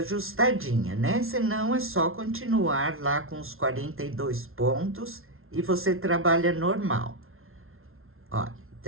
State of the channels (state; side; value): late; left; 0.61 ms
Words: né? Senão, é só continuar lá com os 42 pontos e você trabalha normal. Olha,